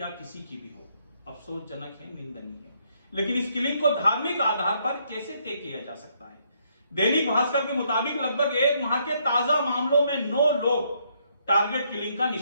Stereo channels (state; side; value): inverted; both; correlation -0.72